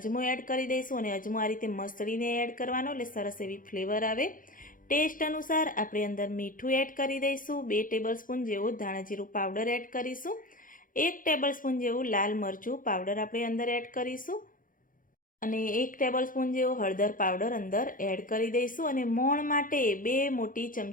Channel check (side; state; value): right; late; 0.40 ms